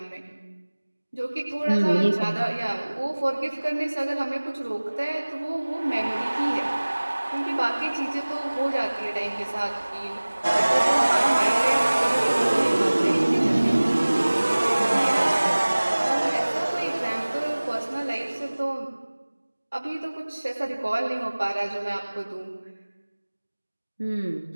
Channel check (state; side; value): inverted; both; correlation -1.00